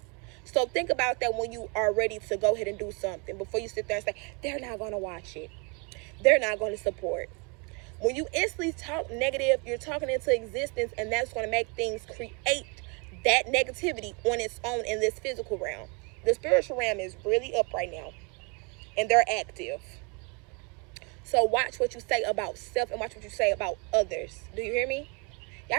So think about that when you are ready to go ahead and do something. Before you sit there and say, they're not going to watch it. They're not going to support. When you instantly talk negative, you're talking into existence, and that's going to make things create that negativity on its own in this physical realm. The spiritual realm is really up right now, and they're active. So watch what you say about self and watch what you say about others. Do you hear me?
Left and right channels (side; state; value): left; quieter; 32.7 dB